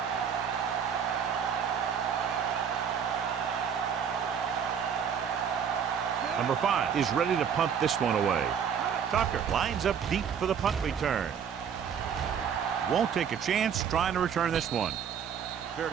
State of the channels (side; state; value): left; quieter; 7.6 dB